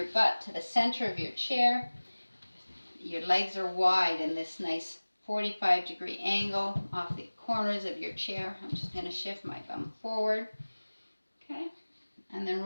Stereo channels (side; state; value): both; inverted; correlation -1.00